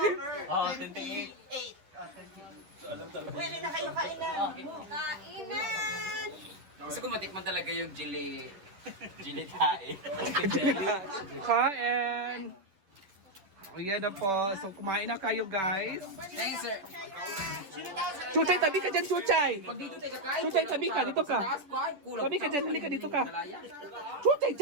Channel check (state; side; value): late; left; 10 ms